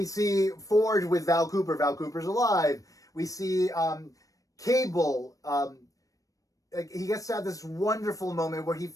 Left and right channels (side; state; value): right; late; 0.16 ms